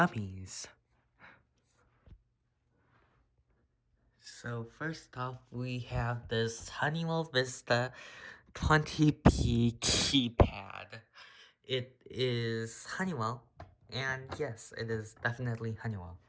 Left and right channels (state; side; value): identical; both; correlation 1.00